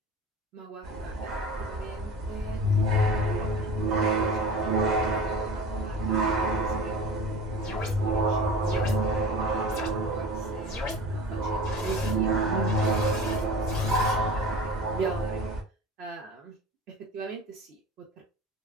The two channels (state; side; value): normal; both; correlation 0.37